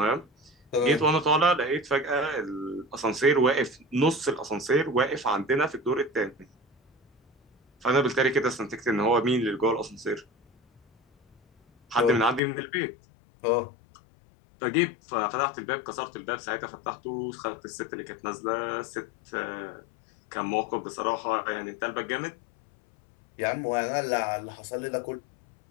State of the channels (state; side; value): drops out; right; at 12.4 s